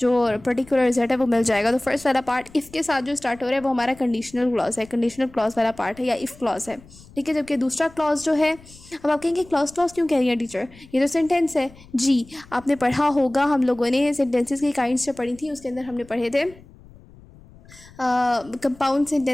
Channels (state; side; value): noise; left; rumble, 23 dB below the sound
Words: पर्टिकुलर रिजल्ट है वो मिल जाएगा. तो फर्स्ट वाला पार्ट इफ़ के साथ जो स्टार्ट हो रहा है वो हमारा कंडीशनल क्लॉज है, कंडीशनल क्लॉज वाला पार्ट है या इफ़ क्लॉज है. ठीक है, जबकि दूसरा क्लॉज जो है, अब आप कहेंगे क्लॉज क्यों कह रही है टीचर, ये तो सेंटेंस है. जी, आपने पढ़ा होगा, हम लोगों ने सेंटेंसेस की काइंड्स जो पढ़ी थी उसके अंदर हमने पढ़े थे compound